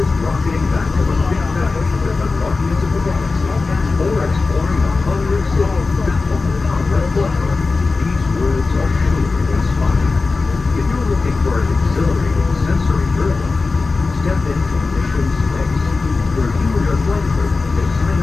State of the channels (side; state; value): right; quieter; 3.9 dB